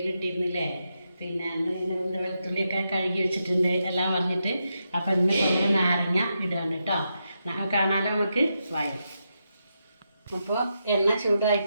ഇട്ടിരുന്നില്ലേ, പിന്നെ വെളുത്തുള്ളിയൊക്കെ കഴുകി വെച്ചിട്ടുണ്ട് എല്ലാം പറഞ്ഞിട്ട്. അപ്പോൾ ഇന്ന് നമ്മൾ നാരങ്ങ ഇടുകയാണ് കേട്ടോ. കാണാനോ നമുക്ക് വായും. അപ്പോൾ എണ്ണ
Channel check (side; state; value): both; inverted; correlation -0.85